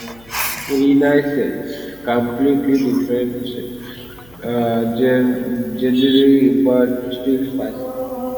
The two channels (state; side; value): noise; left; hum, 26 dB below the sound